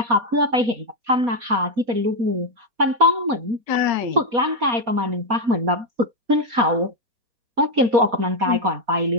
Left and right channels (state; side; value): late; left; 4.2 ms